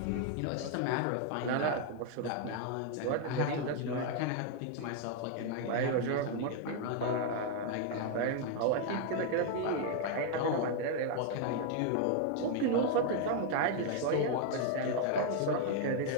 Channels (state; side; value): different; both; correlation 0.00